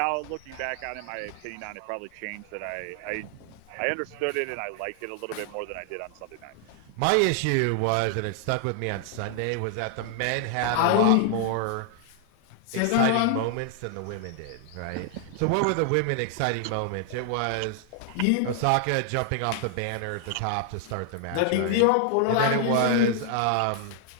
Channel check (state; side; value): different; both; correlation 0.00